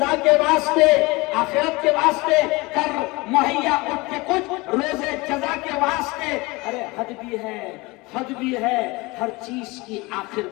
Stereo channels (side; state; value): right; quieter; 23.6 dB